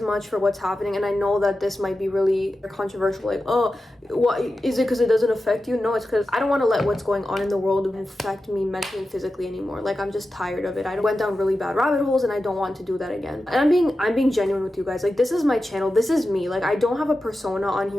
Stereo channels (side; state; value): both; normal; correlation 0.92